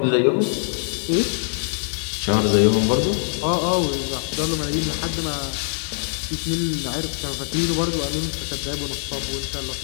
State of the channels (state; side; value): silent; right; 63 dB below the other